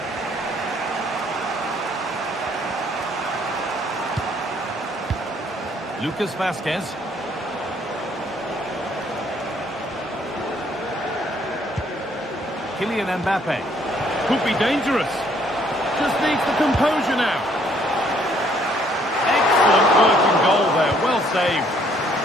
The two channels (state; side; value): normal; both; correlation 0.65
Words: Lucas Vazquez. Kylian Mbappe. Could be dangerous. Just needs the composure now. Excellent working goal there. Well saved.